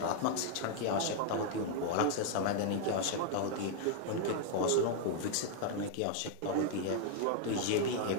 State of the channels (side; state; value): both; different; correlation 0.00